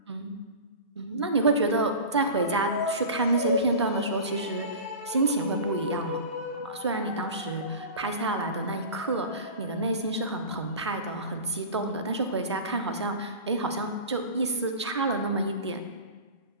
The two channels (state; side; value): inverted; both; correlation -0.33